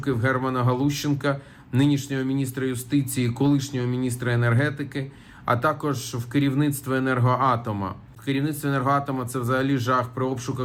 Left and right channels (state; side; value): identical; both; correlation 1.00